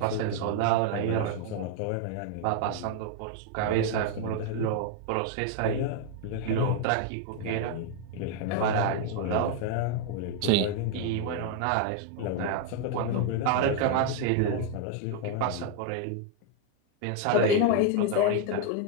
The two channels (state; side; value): different; both; correlation 0.00